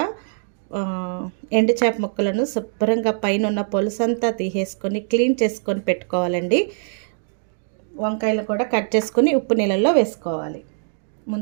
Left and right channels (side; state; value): left; silent; digital silence